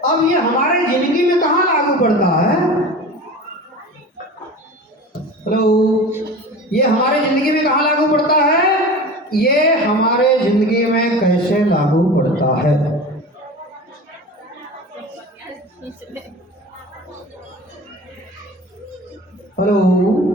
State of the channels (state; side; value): normal; both; correlation 0.34